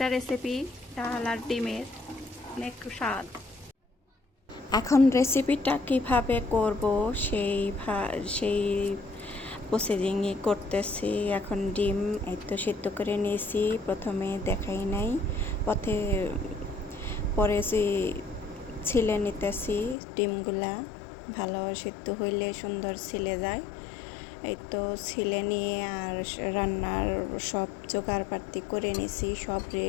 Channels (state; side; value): drops out; right; at 20.0 s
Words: রেসিপি, ডাল আর ডিমের অনেক স্বাদ। এখন রেসিপিটা কিভাবে করব সেই প্রসেসিংই করতেছি। এখন ডিম এই তো সিদ্ধ করে নিয়েছি, প্রথমে দেখাই নাই, পরে ছিলে নিতেছি। ডিমগুলা ভালো সিদ্ধ হইলে সুন্দর ছিলে যায়। এই তো ছিলে নিয়ে আর রান্নার সব জোগাড়পাতি করে নিছি, সব